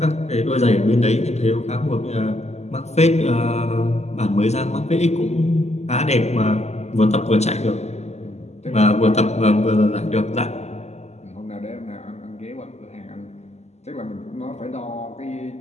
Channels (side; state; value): right; late; 0.32 ms